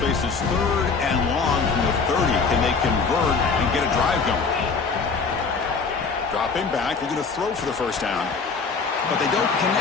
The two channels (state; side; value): quieter; right; 4.9 dB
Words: 3rd and long from the 30. Can they convert and get a drive going? Dropping back, looking to throw for the first down. But they don't